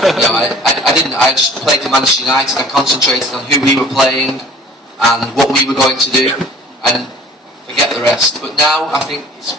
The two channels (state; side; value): normal; both; correlation 0.49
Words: know, I didn't. I just played for Manchester United. I concentrated on who we were playing and what we were going to do, and forget the rest. But now I think it's